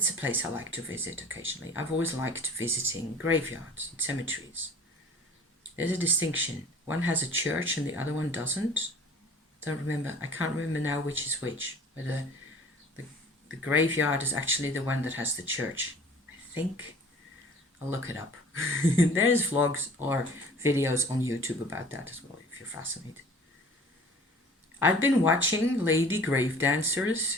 a place I like to visit occasionally. I've always liked visiting graveyards and cemeteries. There's a distinction. One has a church and the other one doesn't. I can't remember now which is which. Whether the graveyard is actually the one that has the church. I think. I'll look it up. There's vlogs or videos on YouTube about that as well, if you're fascinated. I've been watching Lady Grave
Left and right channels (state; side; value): normal; both; correlation 0.47